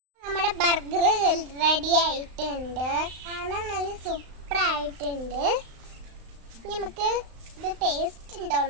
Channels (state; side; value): late; left; 35 ms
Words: burger ready ആയിട്ടുണ്ട്. കാണാൻ നല്ല സൂപ്പർ ആയിട്ടുണ്ട്. നമുക്ക് ഇത് ടേസ്റ്റ്